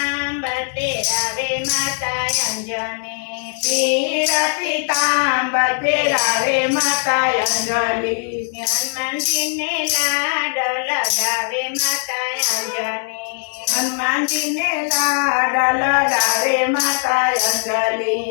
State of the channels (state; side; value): silent; right; 66 dB below the other